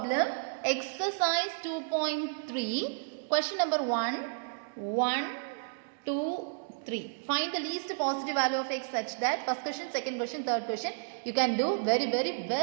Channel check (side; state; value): left; silent; digital silence